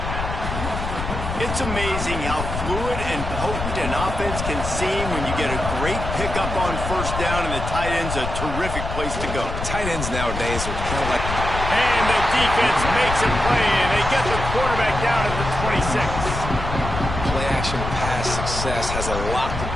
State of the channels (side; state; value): left; noise; rumble, 5 dB below the sound